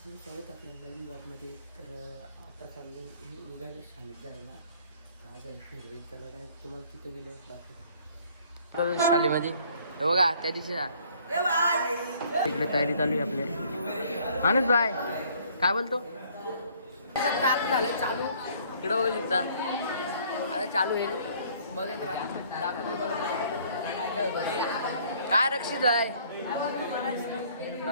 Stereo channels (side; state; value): both; inverted; correlation -0.59